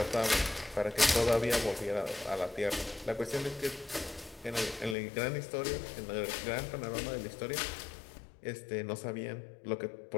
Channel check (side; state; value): right; drops out; at 5.0 s